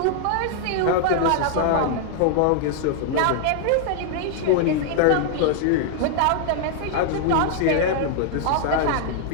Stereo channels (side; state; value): both; different; correlation 0.00